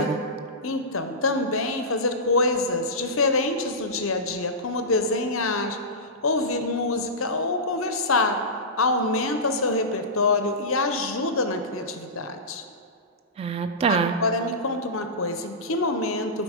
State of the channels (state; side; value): normal; both; correlation -0.17